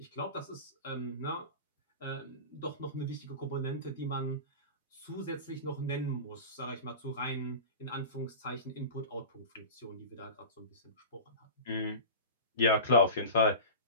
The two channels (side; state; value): both; inverted; correlation -0.32